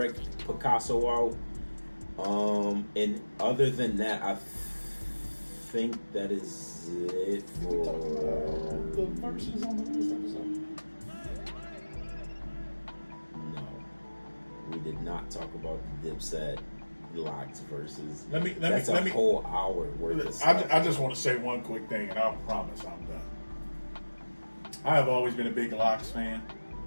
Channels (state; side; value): inverted; both; correlation -1.00